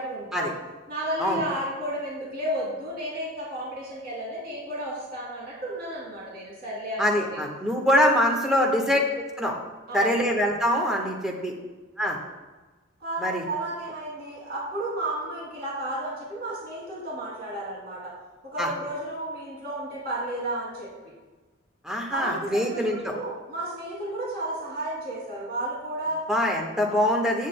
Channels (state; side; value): normal; both; correlation 0.37